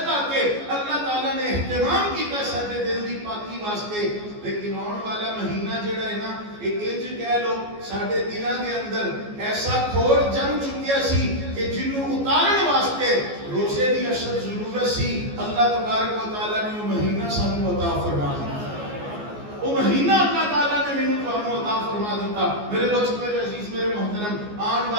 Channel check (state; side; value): late; left; 14 ms